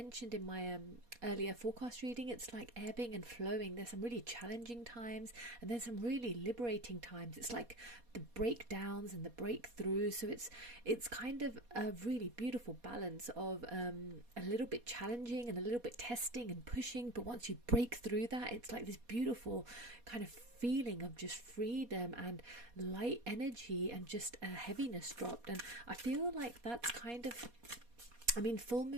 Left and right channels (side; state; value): left; late; 4.2 ms